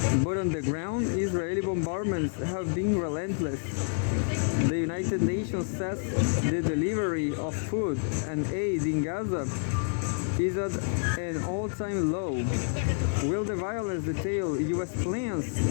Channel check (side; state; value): right; silent; digital silence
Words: But on the ground, Israeli bombardments have been relentless. The United Nations says the delivery of food and aid in Gaza is at an all-time low. Will the violence detail U.S. plans?